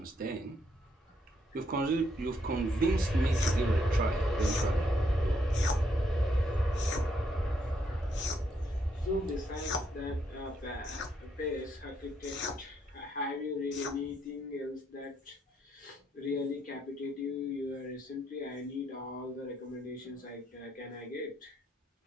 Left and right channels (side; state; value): both; normal; correlation 0.75